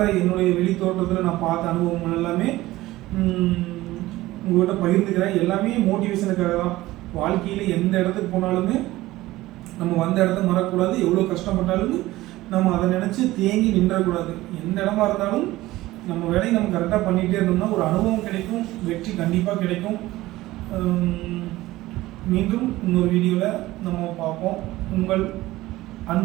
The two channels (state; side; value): quieter; left; 17.4 dB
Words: என்னுடைய வெளித்தோட்டத்தில் நான் பார்த்த அனுபவங்கள் எல்லாமே உங்கள்கிட்ட பகிர்ந்துக்கிறேன். எல்லாமே மோட்டிவேஷனுக்காக தான். வாழ்க்கையில் எந்த இடத்துக்கு போனாலுமே நம்ம வந்த இடத்த மறக்கக்கூடாது. எவ்வளோ கஷ்டப்பட்டாலும் நம்ம அதை நினச்சி தேங்கி நின்றக்கூடாது. எந்த இடமா இருந்தாலும் நம்ம வேலையை நம்ம கரெக்டாக பண்ணிகிட்டே இருந்தோம்னா ஒரு அனுபவம் கிடைக்கும், வெற்றி கண்டிப்பாக கிடைக்கும். மீண்டும் இன்னொரு வீடியோவில் நம்ம பார்ப்போம். உங்கள்